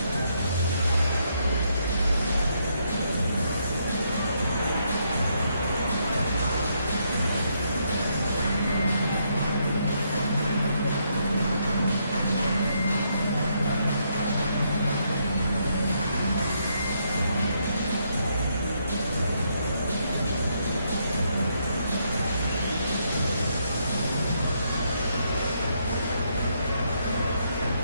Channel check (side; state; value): both; inverted; correlation -0.76